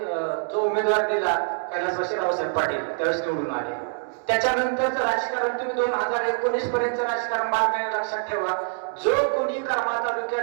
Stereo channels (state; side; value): silent; left; digital silence